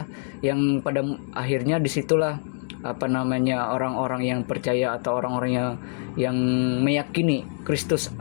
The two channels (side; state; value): right; silent; 62 dB below the other